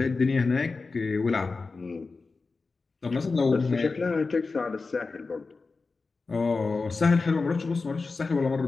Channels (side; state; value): right; quieter; 4.1 dB